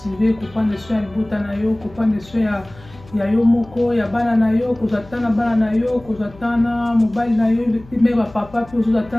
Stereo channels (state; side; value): noise; left; hum, 22 dB below the sound